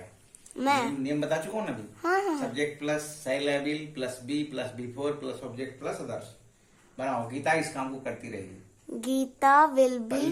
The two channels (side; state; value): both; identical; correlation 1.00